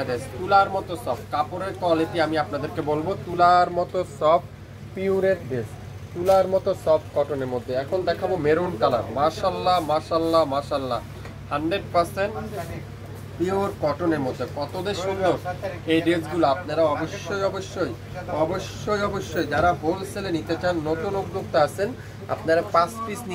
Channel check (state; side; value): identical; both; correlation 1.00